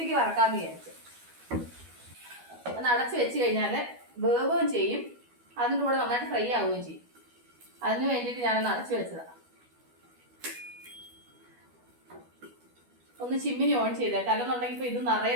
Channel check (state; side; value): late; left; 12 ms